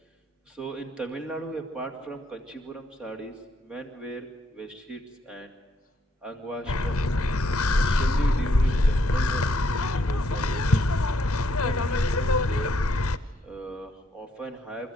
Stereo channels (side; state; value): both; normal; correlation 0.73